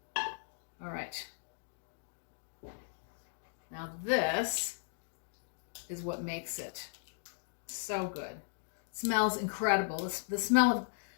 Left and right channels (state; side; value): silent; right; digital silence